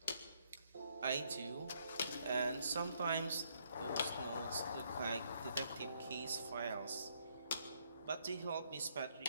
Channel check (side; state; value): both; inverted; correlation -0.71